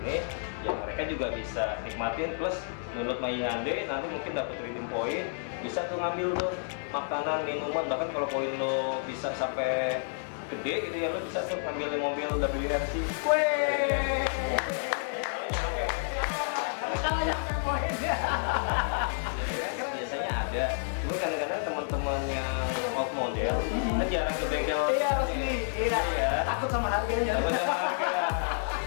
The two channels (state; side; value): silent; right; digital silence